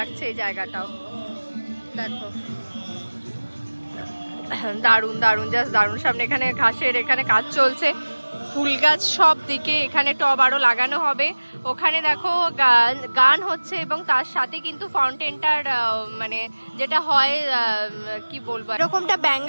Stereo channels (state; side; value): inverted; both; correlation -1.00